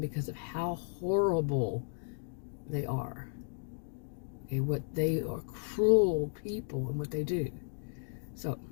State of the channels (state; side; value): silent; right; digital silence